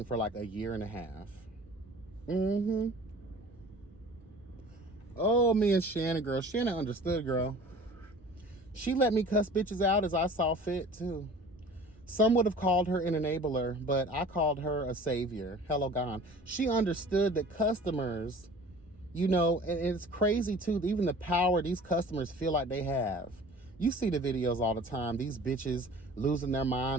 for like a year and a half. Mm-hmm. Oh, me and Shannon, girl. Shannon understood, girl. She let me cuss bitches out as I saw fit, too. Some would have called her an enabler, but I called her a savior. Hello, God. She understood that customers, and it's crazy, too, even the power these customers feel like they have. You see the videos all the time. These bitches losing their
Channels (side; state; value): both; normal; correlation 0.45